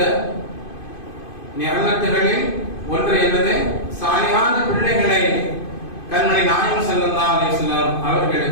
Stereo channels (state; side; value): late; right; 2.5 ms